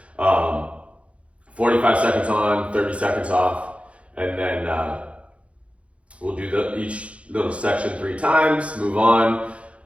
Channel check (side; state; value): left; late; 0.062 ms